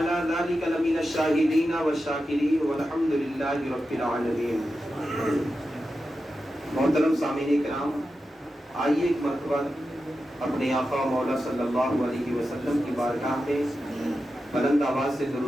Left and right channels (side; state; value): both; normal; correlation 0.91